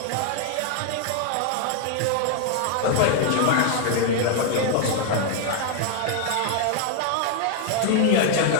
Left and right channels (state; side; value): different; both; correlation 0.00